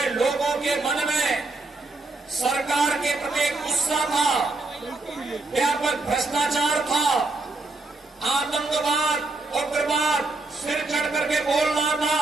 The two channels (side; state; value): left; quieter; 3.3 dB